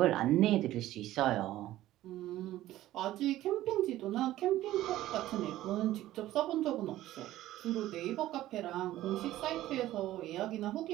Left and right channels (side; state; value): left; quieter; 14.8 dB